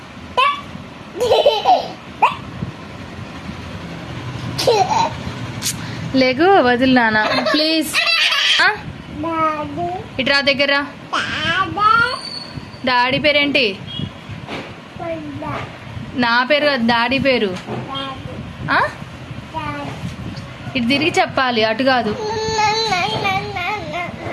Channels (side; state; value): both; identical; correlation 1.00